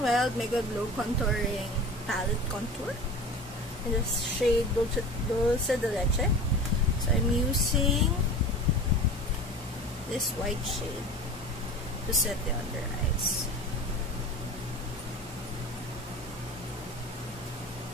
Wild Mega Glow Contouring Palette Contour in the shade Dulce de Leche. So, I'm using this white shade to set the under eyes.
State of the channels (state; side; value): normal; both; correlation 0.36